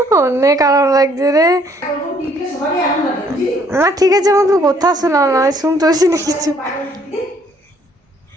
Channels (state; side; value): normal; both; correlation 0.64